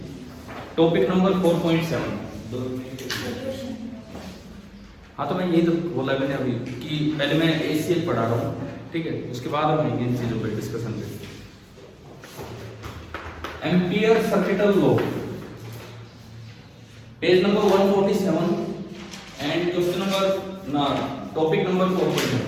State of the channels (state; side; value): identical; both; correlation 1.00